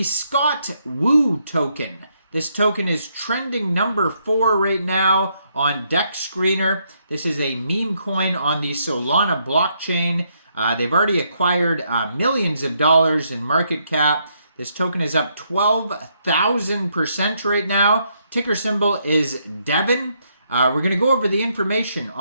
Scott Woo token. This token is trending number 4 right now on Dex Screener. This is a meme coin on the Solana blockchain. They've already acquired millions of dollars in market cap. This token is up 12,000% right now. Ticker symbol is Devin. We're going to go over the information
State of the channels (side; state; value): both; inverted; correlation -0.75